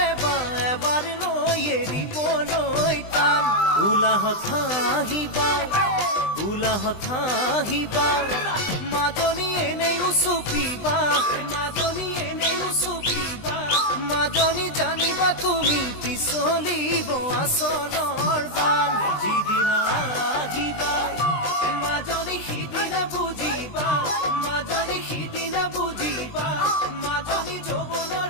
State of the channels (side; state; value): right; late; 20 ms